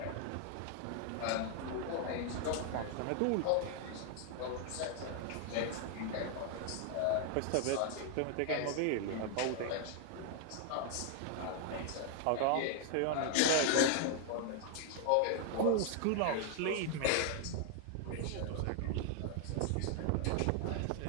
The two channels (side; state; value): both; different; correlation 0.00